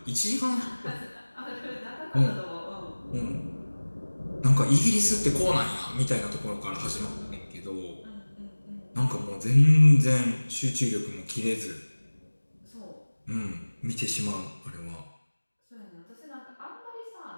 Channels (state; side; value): inverted; both; correlation -1.00